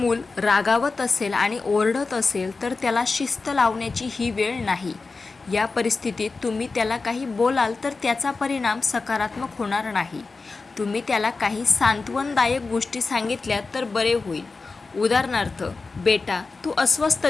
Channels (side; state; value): right; quieter; 4.0 dB